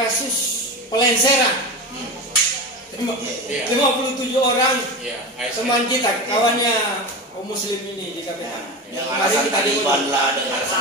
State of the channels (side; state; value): both; normal; correlation 0.24